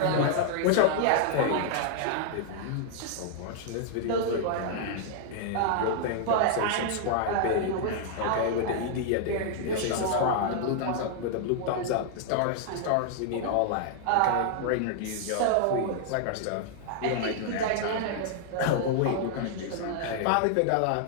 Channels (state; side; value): different; both; correlation -0.01